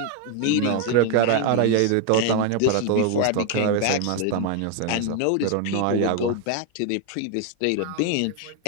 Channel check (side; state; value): both; different; correlation 0.01